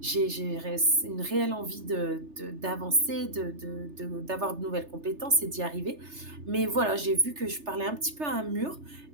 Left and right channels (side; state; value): left; late; 3.3 ms